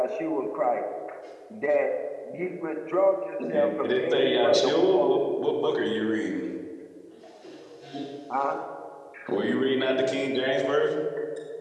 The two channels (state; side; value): identical; both; correlation 1.00